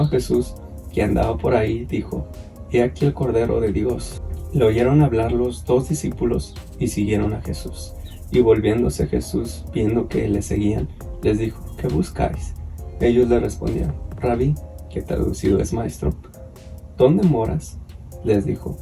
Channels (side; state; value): both; identical; correlation 1.00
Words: a Jesús, que andaba por ahí, dijo: He aquí el Cordero de Dios, Le oyeron hablar los dos discípulos y siguieron a Jesús. Y volviéndose Jesús, viendo que le seguían, les dijo: ¿Qué buscáis? Ellos le respondieron: Rabí, que traducido es maestro, ¿dónde moras? Les dijo: